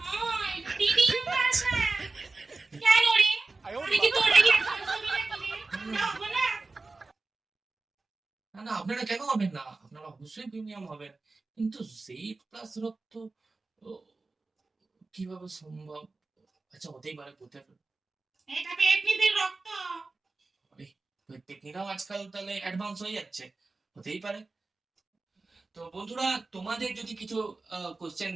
ভাই, টিভি প্লাস না। কেন রে? আমি কি তোর রেগে ছবি নাকি রে? না হবে না। না না, আপনারা কেন হবেন না, আপনারা অবশ্যই প্রিমিয়াম হবেন, কিন্তু জেড প্লাস রক্ত ও, কিভাবে সম্ভব? আচ্ছা হতেই পারে, কোথায়? এটা পেটনিদের রক্ত। আরে, টেকনিকরাও আজকাল তাহলে অ্যাডভান্স হয়ে যাচ্ছে, হতেই পারে। তো বন্ধুরা, তোমাদের যদি কিছু কোশ্চেন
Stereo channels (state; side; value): quieter; left; 3.6 dB